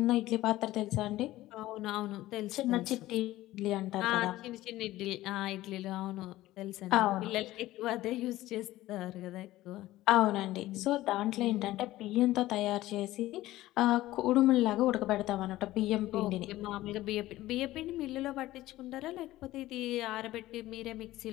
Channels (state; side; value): quieter; right; 16.2 dB